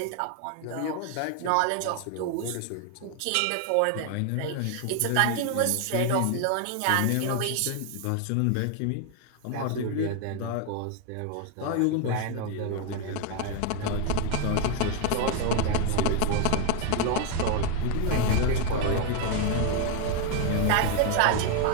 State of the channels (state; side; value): different; both; correlation 0.01